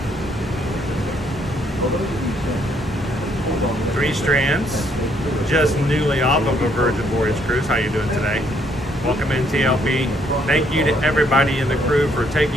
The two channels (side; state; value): both; normal; correlation 0.69